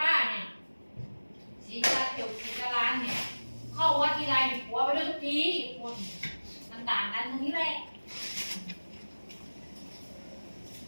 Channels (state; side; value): inverted; both; correlation -1.00